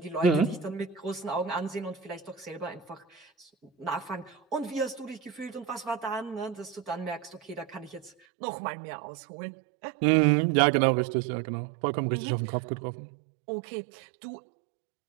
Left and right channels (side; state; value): left; drops out; at 8.1 s